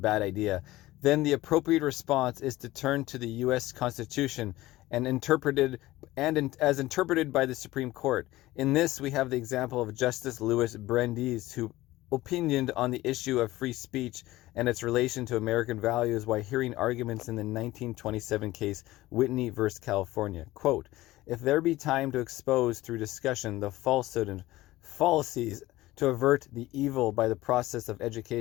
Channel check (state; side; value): quieter; right; 17.4 dB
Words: idea, then the appropriate response is to turn to the U.S. Constitution as interpreted by the Supreme Court. In this, we have the example of Justice Louis Brandeis, who opinioned on the issue of free speech and its relation to American values while hearing arguments in the 1927 case Whitney v. California. Quote, "If there be time to expose through discussion the falsehood and fallacies to avert the evil by the process of